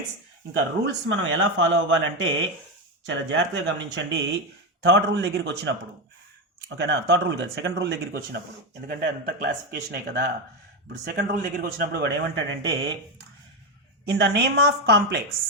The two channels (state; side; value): normal; both; correlation 0.11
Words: ఇంకా రూల్స్ మనం ఎలా ఫాలో అవ్వాలంటే చాలా జాగ్రత్తగా గమనించండి. థర్డ్ రూల్ దగ్గరికి వచ్చినప్పుడు, ఓకేనా? థర్డ్ రూల్ కాదు, సెకండ్ రూల్ దగ్గరికి వచ్చినప్పుడు, ఎందుకంటే అంత క్లాసిఫికేషనే కదా. ఇప్పుడు సెకండ్ రూల్ దగ్గరికి వచ్చినప్పుడు వాడు ఏమంటాడంటే, in the name of complex